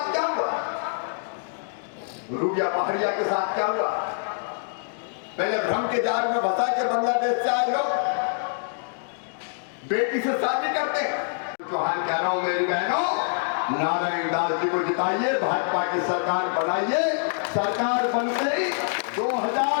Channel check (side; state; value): right; silent; digital silence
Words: क्या हुआ? रूबिया पहाड़िया के साथ क्या हुआ? पहले भ्रम के जाल में फंसा के बांग्लादेश से आए लोग बेटी से शादी करते हैं। तो हाल कह रहा हूं मेरी बहनों, नारायण दास जी को जिताइए, भाजपा की सरकार बनाइए। सरकार बनते ही